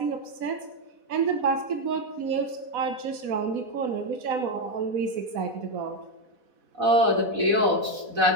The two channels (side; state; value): left; late; 4.1 ms